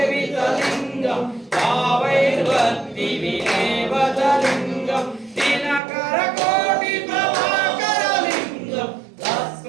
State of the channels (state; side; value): drops out; left; at 5.8 s